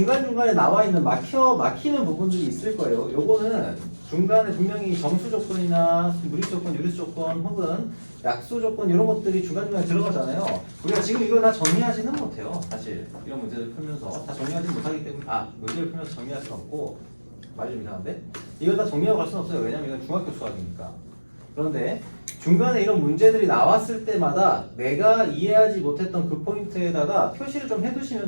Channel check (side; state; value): both; inverted; correlation -1.00